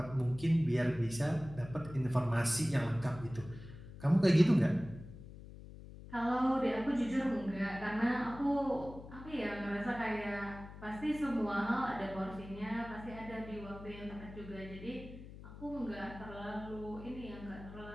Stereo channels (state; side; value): noise; left; hum, 15 dB below the sound